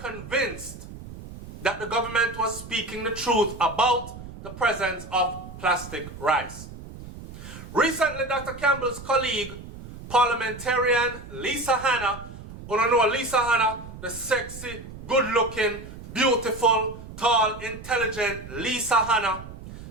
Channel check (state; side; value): noise; right; rumble, 14 dB below the sound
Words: that the government was speaking the truth about the presence of plastic rice. Recently, Dr. Campbell's colleague, parliamentarian Lisa Hanna, you know Lisa Hanna, the sexy, good-looking, beautiful, tall, intelligent Lisa Hanna.